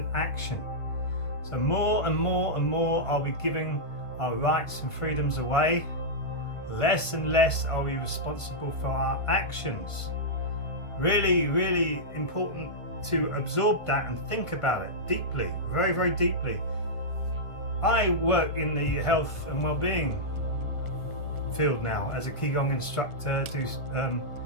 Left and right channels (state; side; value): late; right; 1.5 ms